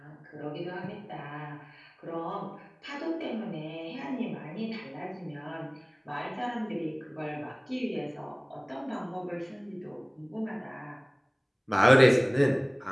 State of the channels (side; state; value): both; identical; correlation 1.00